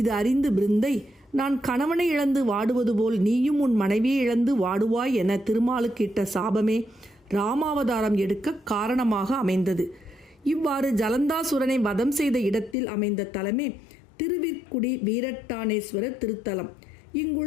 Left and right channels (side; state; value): right; drops out; at 12.8 s